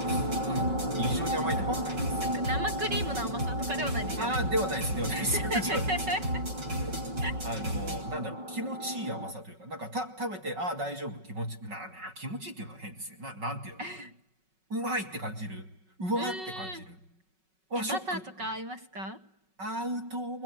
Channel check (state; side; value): late; left; 5.4 ms